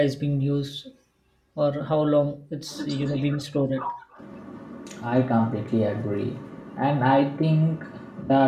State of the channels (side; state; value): both; identical; correlation 1.00